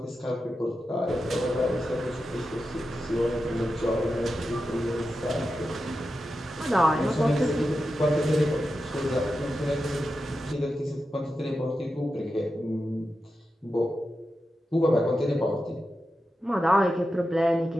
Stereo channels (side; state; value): both; normal; correlation 0.90